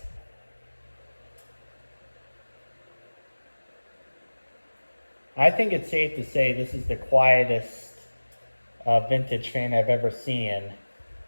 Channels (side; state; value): both; inverted; correlation -1.00